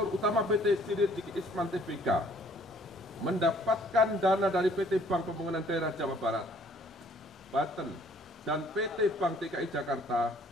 Utama PT Sri Rezeki Isman Tbk mendapatkan dana dari PT Bank Pembangunan Daerah Jawa Barat, Banten, dan PT Bank DKI Jakarta,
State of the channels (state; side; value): normal; both; correlation 0.59